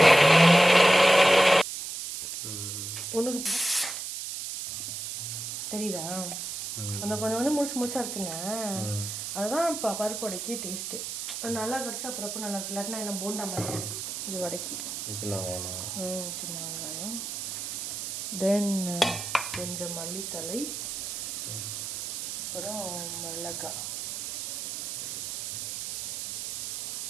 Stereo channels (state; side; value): noise; right; hiss, 5 dB below the sound